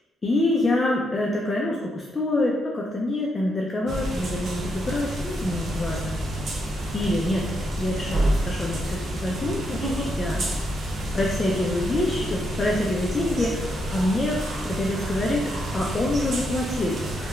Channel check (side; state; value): both; normal; correlation 0.80